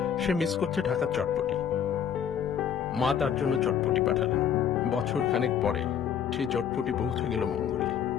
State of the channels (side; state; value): right; quieter; 8.5 dB